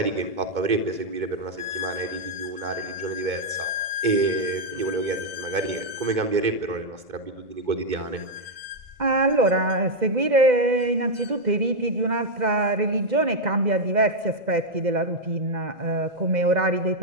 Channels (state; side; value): late; left; 2.1 ms